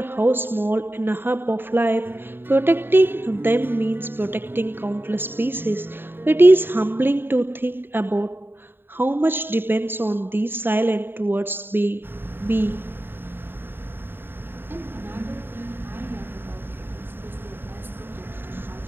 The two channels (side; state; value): left; late; 0.10 ms